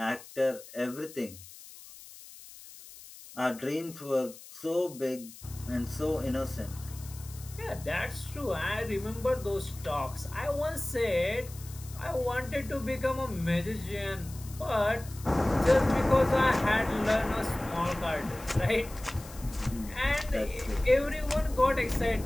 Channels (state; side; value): noise; left; hiss, 17 dB below the sound